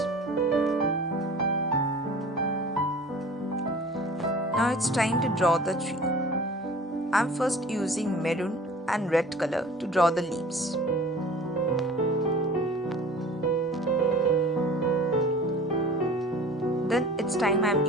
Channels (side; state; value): both; normal; correlation 0.44